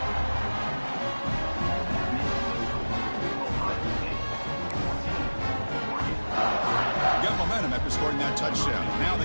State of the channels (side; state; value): both; inverted; correlation -1.00